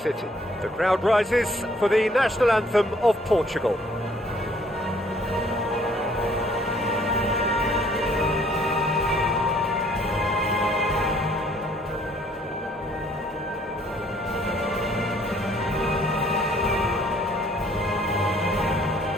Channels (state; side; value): normal; both; correlation 0.61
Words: The crowd rises for the national anthem of Portugal.